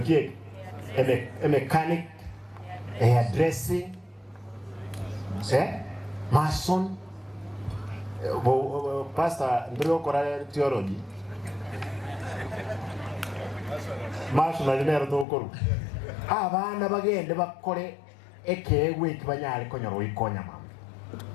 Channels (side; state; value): right; drops out; at 15.2 s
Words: kie mechanic hairdressing mason pastor ndrio kora theology mason alinero to koru abana bagende bakore ekewe kibanyale konyoro ikonya mama